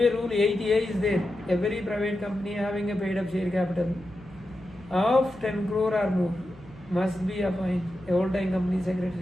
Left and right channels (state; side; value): noise; left; hum, 23 dB below the sound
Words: rule 8A is there. Every private company having a paid-up share capital of 10 crore or more must be appoint a whole-time company